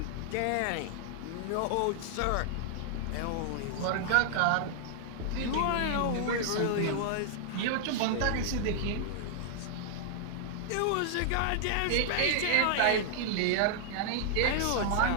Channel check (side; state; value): both; different; correlation -0.01